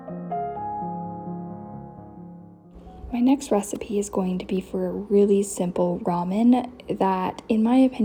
My next recipe is going to be for a really simple ramen that, in my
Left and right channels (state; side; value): identical; both; correlation 1.00